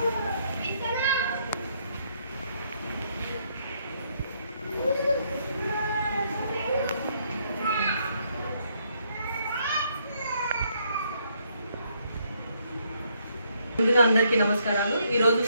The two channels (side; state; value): both; inverted; correlation -0.71